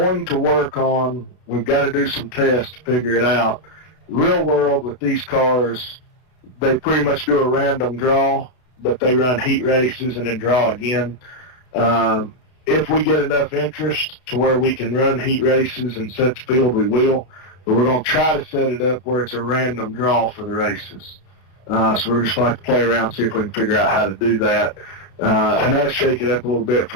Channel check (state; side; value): late; right; 32 ms